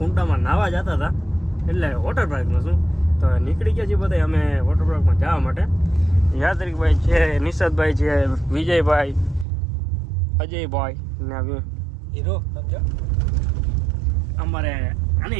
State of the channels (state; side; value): drops out; left; at 9.5 s